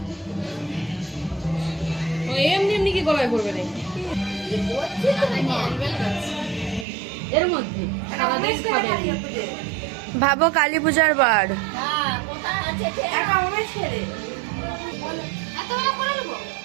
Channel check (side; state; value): left; drops out; at 6.9 s